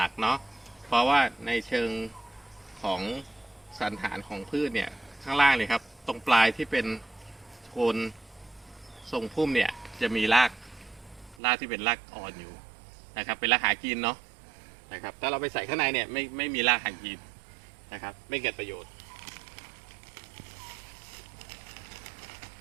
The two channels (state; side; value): drops out; left; at 11.4 s